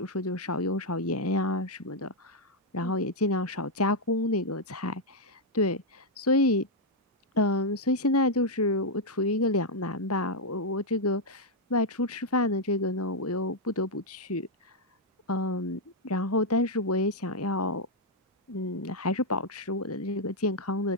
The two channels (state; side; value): normal; both; correlation -0.01